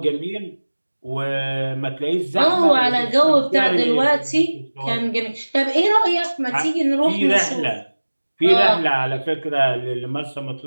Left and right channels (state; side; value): inverted; both; correlation -1.00